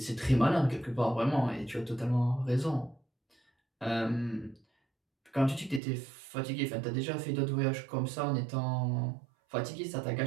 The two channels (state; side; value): drops out; left; at 5.8 s